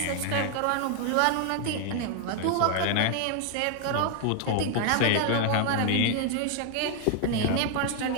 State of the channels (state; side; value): different; both; correlation 0.00